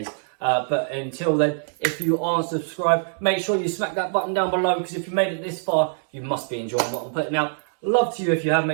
But until then, if you aren't subscribed, make sure you smack that button down below, because if you made it this far, you must be enjoying what I'm putting out. Love to you if you have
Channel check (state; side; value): silent; left; 63 dB below the other